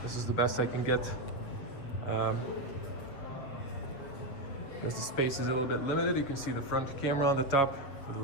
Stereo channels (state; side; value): late; right; 7.5 ms